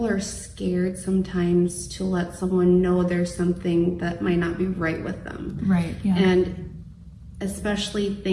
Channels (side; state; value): both; identical; correlation 1.00